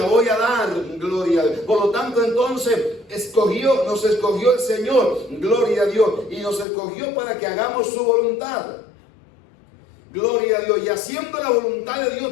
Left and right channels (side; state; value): right; drops out; at 6.7 s